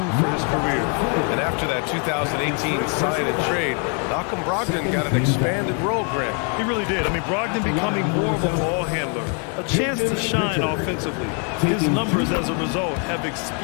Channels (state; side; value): quieter; right; 39.4 dB